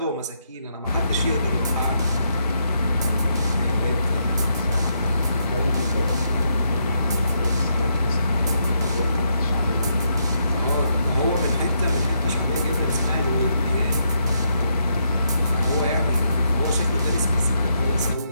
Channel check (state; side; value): inverted; both; correlation -0.78